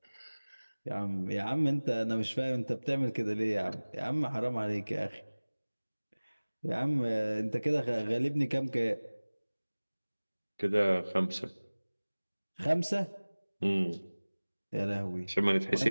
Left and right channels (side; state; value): both; inverted; correlation -1.00